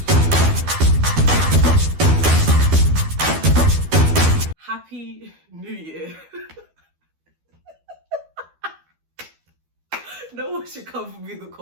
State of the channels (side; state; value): left; late; 12 ms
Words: Happy New Year. No one should come for me in the